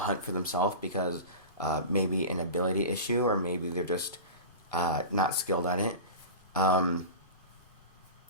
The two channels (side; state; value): right; late; 2.5 ms